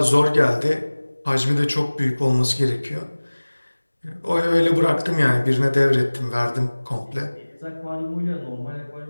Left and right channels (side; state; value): both; inverted; correlation -1.00